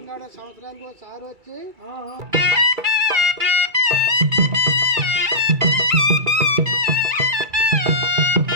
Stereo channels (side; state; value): left; late; 2.3 ms